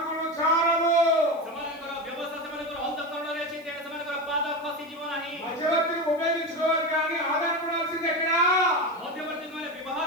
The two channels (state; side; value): noise; right; hiss, 29 dB below the sound